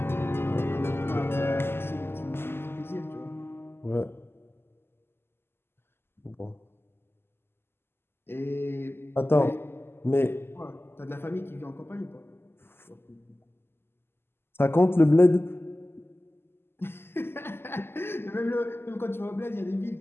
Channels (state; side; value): late; right; 0.11 ms